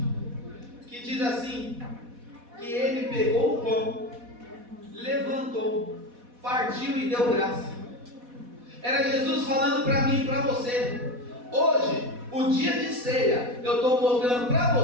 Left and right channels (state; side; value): late; left; 4.1 ms